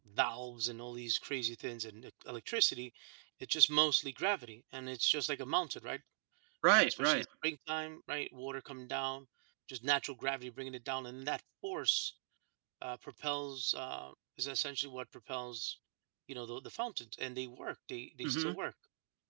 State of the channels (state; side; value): silent; left; digital silence